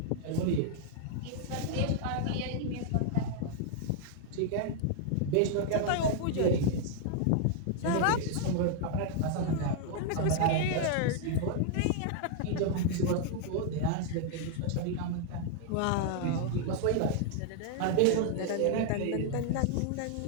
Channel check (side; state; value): both; different; correlation 0.00